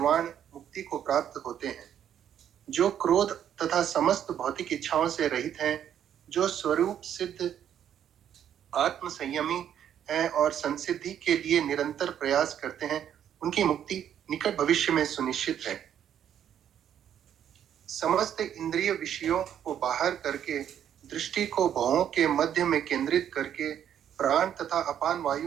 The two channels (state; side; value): quieter; left; 9.7 dB